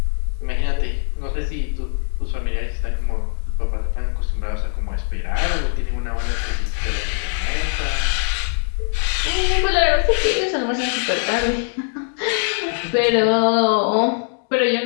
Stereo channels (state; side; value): silent; right; 56 dB below the other